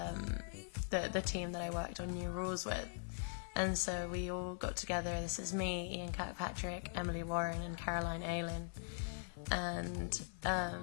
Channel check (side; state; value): right; silent; 50 dB below the other